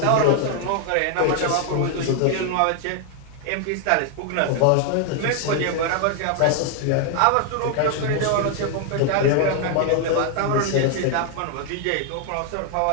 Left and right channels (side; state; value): both; different; correlation 0.00